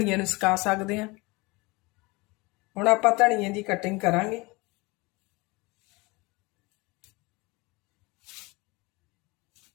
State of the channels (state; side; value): quieter; right; 24.8 dB